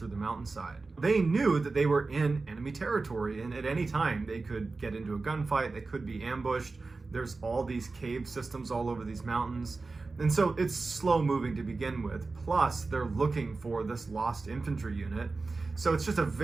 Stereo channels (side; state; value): left; quieter; 3.8 dB